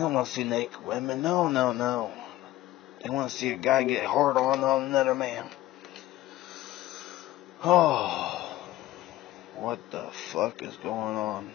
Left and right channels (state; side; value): quieter; right; 15.5 dB